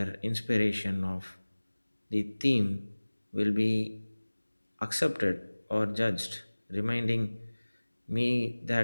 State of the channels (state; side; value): inverted; both; correlation -1.00